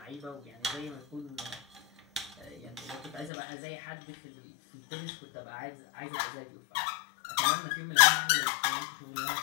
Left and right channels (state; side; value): drops out; right; at 3.3 s